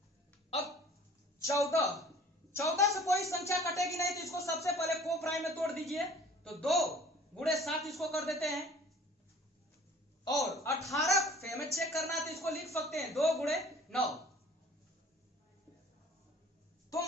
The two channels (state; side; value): normal; both; correlation 0.49